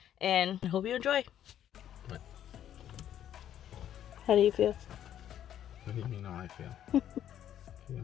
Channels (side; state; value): right; quieter; 10.7 dB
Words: and I hope you enjoy. What? How do you feel? What do you mean how I feel?